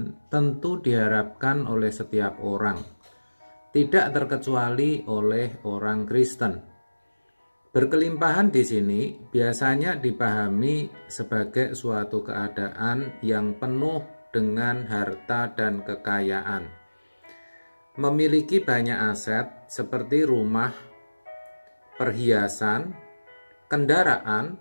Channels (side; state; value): both; inverted; correlation -1.00